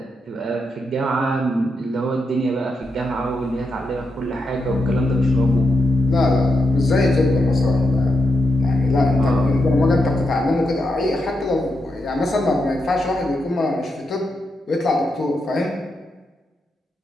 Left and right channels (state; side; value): normal; both; correlation 0.85